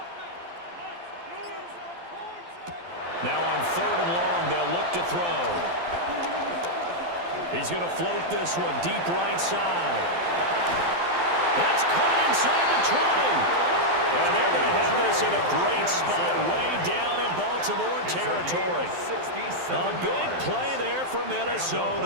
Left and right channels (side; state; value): left; late; 12 ms